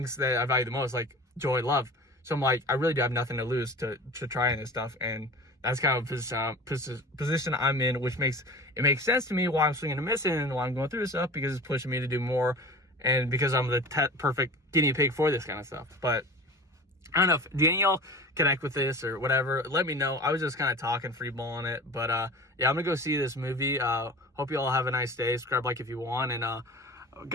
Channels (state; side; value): normal; both; correlation 0.37